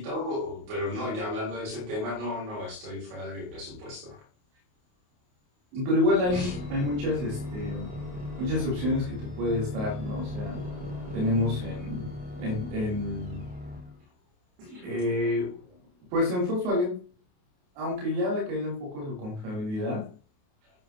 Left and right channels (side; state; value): left; late; 28 ms